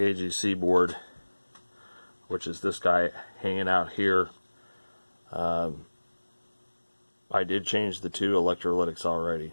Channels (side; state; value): both; inverted; correlation -1.00